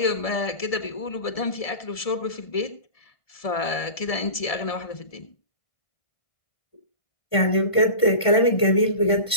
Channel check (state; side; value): late; right; 1.7 ms